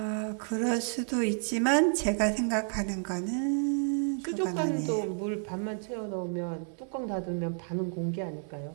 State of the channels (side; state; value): left; silent; 56 dB below the other